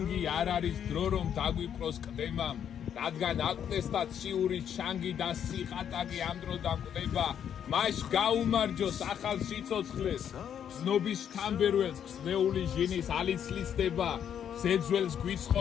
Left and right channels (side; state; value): right; quieter; 8.9 dB